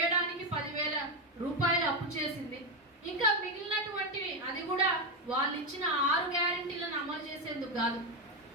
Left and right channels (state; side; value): normal; both; correlation 0.09